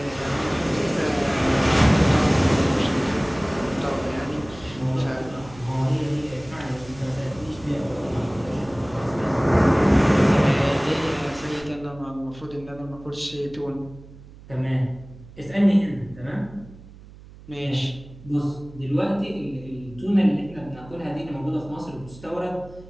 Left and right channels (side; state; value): right; noise; hum, 20 dB below the sound